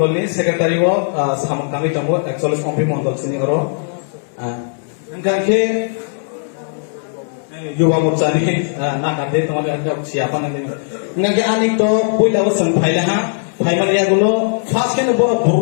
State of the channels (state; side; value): silent; right; digital silence